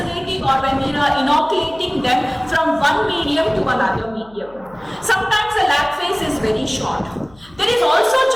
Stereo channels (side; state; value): left; noise; hum, 26 dB below the sound